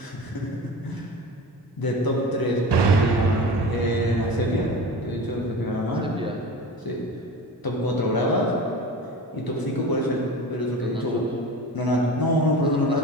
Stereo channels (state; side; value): normal; both; correlation 0.33